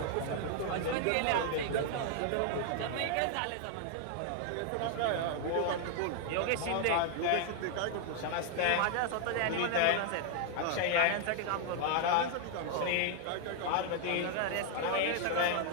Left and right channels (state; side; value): different; both; correlation 0.00